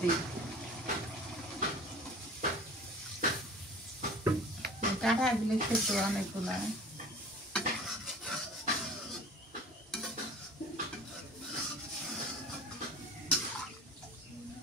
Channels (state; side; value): normal; both; correlation 0.42